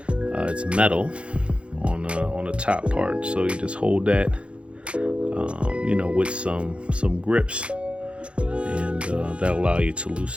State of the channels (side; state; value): left; late; 0.059 ms